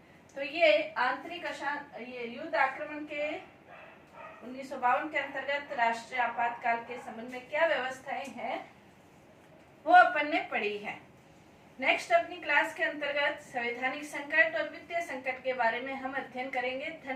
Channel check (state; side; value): identical; both; correlation 1.00